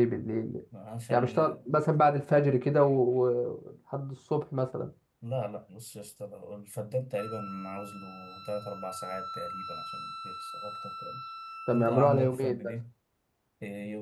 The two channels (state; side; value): identical; both; correlation 1.00